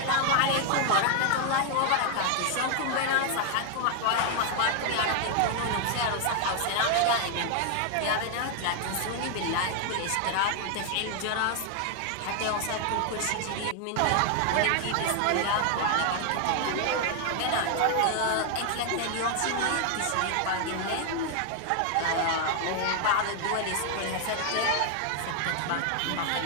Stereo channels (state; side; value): different; both; correlation 0.00